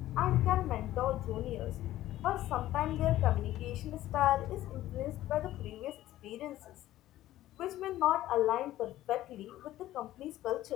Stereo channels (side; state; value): right; quieter; 14.5 dB